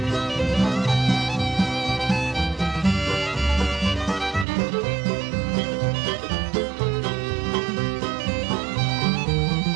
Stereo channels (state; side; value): drops out; left; at 4.5 s